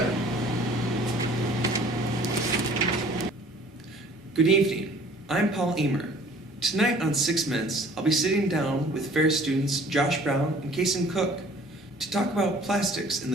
Good evening, I'm Paul Emer. Tonight on 6 Minutes, I'll be sitting down with Ferris students Josh Brown and Kason Cook to talk about plastics in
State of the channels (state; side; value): normal; both; correlation 0.52